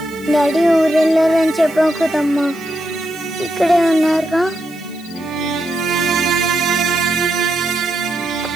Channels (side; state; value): left; noise; hiss, 23 dB below the sound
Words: డాడీ ఊరెళ్ళారని చెప్పావు కదమ్మా, ఇక్కడే ఉన్నారుగా.